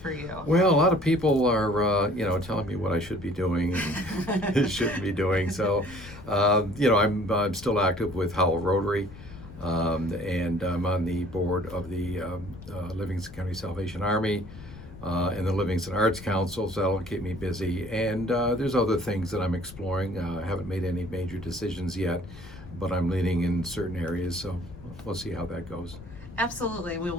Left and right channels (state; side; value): noise; left; rumble, 16 dB below the sound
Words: you? Well, a lot of people are telling me what I should be doing and shouldn't be doing. So I'm still active with Howell Rotary, and I'm on the board of the Livingston County Salvation Army and the Livingston Arts Council, so that'll keep me busy. And there's other things that I'm exploring. I haven't made any major decisions yet, but I'm leaning in certain areas, so we'll see how that goes. Absolutely.